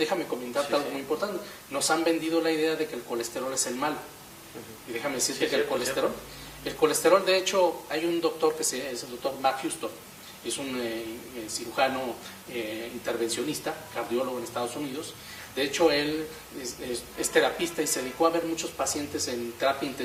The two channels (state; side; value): identical; both; correlation 1.00